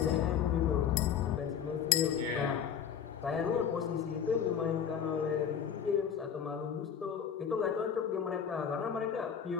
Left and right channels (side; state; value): right; quieter; 7.9 dB